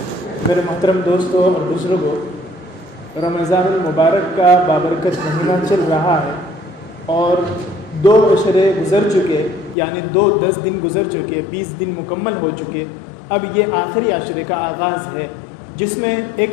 میرے محترم دوستوں اور بزرگوں، رمضان المبارک کا بابرکت مہینہ چل رہا ہے اور 2 عشرے گزر چکے، یعنی 10 دن گزر چکے، 20 دن مکمل ہو چکے۔ اب یہ آخری عشرے کا آغاز ہے جس میں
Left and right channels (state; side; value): drops out; right; at 9.8 s